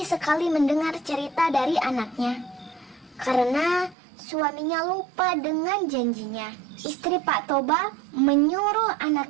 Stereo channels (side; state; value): left; drops out; at 4.0 s